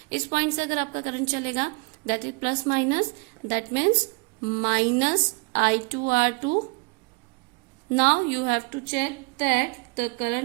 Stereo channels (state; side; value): quieter; left; 31.1 dB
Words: इस पॉइंट से अगर आपका करंट चलेगा, that is plus minus, that means minus I2 R2. Now you have to check that the